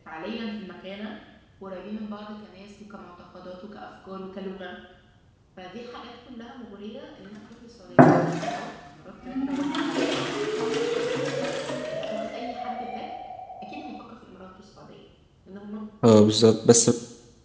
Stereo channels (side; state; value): both; identical; correlation 1.00